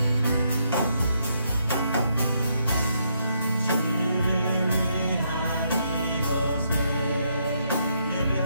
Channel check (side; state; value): both; inverted; correlation -0.76